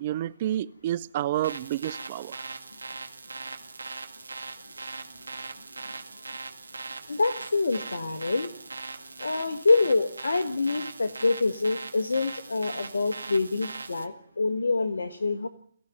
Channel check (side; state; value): both; inverted; correlation -0.86